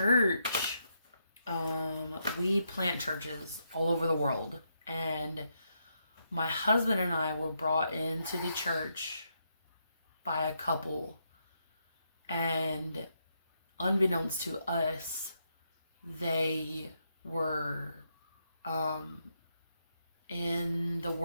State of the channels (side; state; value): both; inverted; correlation -0.80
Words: we plant churches all over the world. And my husband and I were brought into the church by a couple. And unbeknownst to us, they were in the